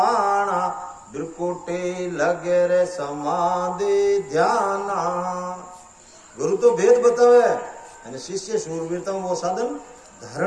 बिरकुटी लगे रे समाधि ध्याना। गुरु तो भेद बतावे અને शिष्य शूरवीरता वो साधन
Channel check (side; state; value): both; identical; correlation 1.00